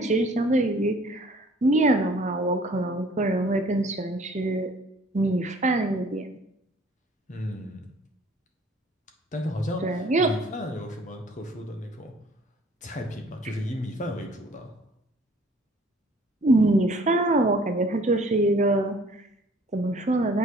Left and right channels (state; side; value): normal; both; correlation 0.55